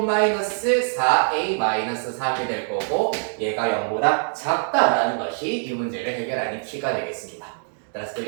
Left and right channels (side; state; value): left; silent; digital silence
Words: 마이너스 4a 마이너스 3이 될 거고, 얘가 0보다 작다라는 것이 이 문제를 해결하는 키가 되겠습니다. 따라서 그